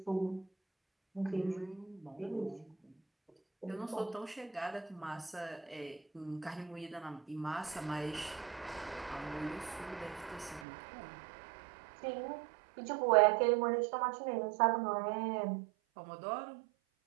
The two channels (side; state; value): left; drops out; at 10.7 s